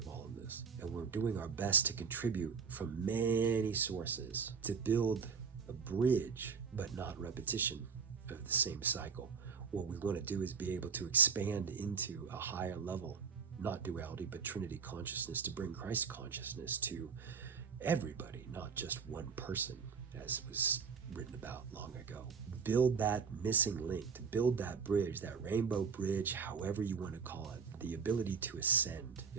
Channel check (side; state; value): left; quieter; 6.0 dB